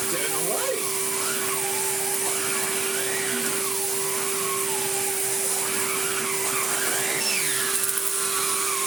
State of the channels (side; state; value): left; quieter; 3.4 dB